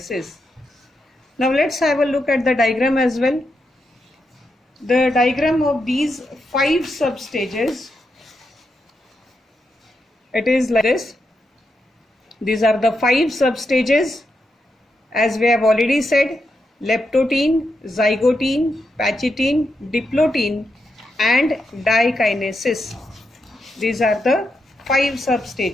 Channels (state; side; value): normal; both; correlation 0.84